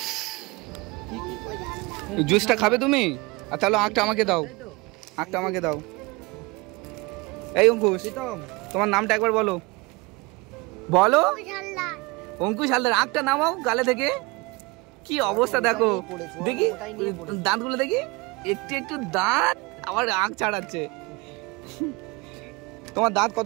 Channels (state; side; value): quieter; left; 25.2 dB